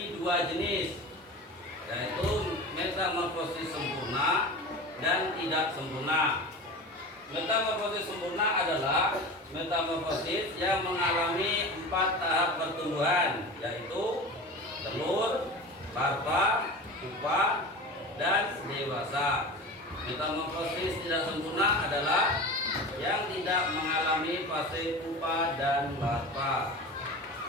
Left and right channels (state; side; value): normal; both; correlation 0.32